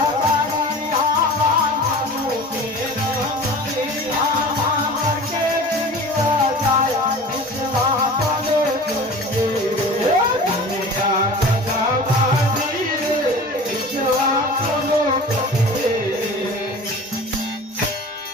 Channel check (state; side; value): normal; both; correlation 0.39